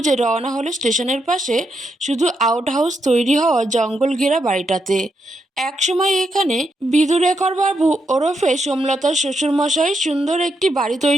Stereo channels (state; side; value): normal; both; correlation 0.81